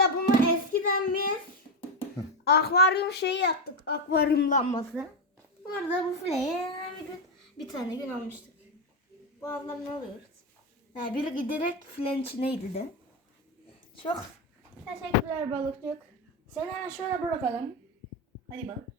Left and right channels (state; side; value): normal; both; correlation 0.09